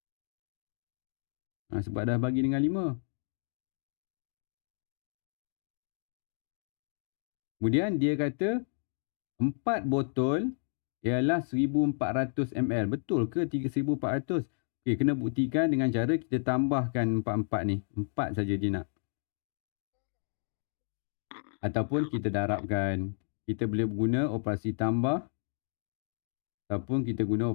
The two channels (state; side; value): silent; right; digital silence